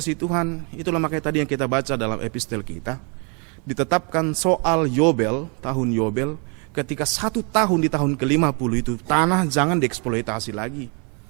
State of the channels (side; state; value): left; quieter; 35.8 dB